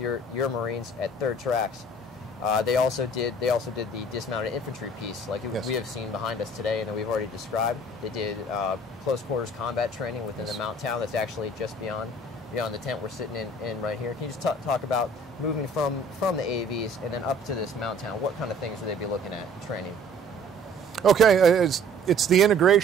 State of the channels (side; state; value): both; normal; correlation 0.52